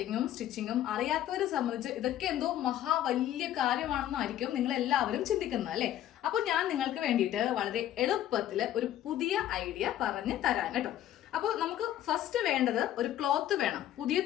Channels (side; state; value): right; quieter; 12.2 dB